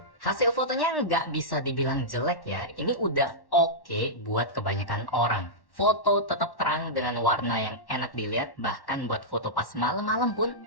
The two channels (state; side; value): late; right; 1.1 ms